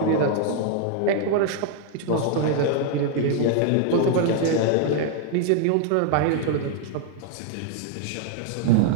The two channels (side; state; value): both; different; correlation 0.00